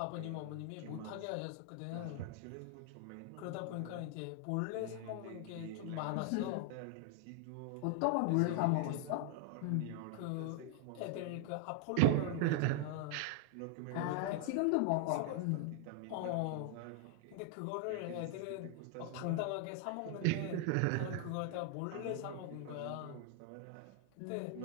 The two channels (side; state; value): both; different; correlation 0.00